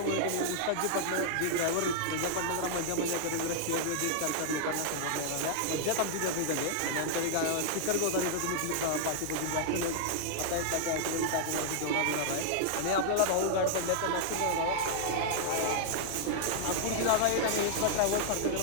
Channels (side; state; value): both; different; correlation -0.01